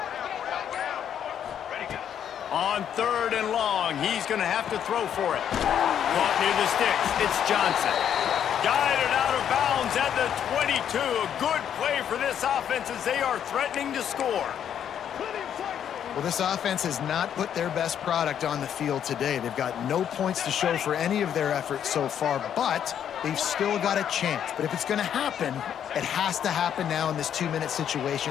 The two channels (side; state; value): right; quieter; 9.2 dB